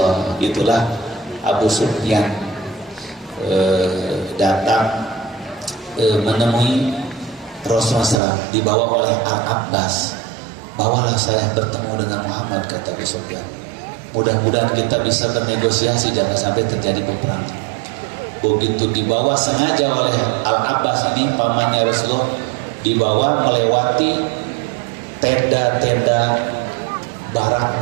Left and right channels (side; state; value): left; drops out; at 8.2 s